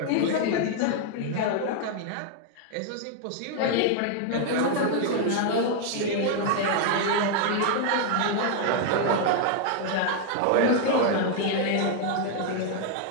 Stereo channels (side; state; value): both; different; correlation 0.00